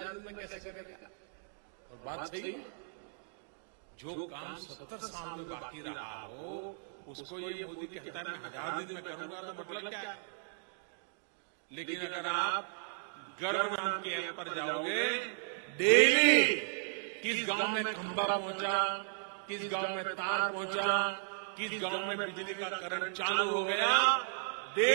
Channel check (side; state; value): left; silent; digital silence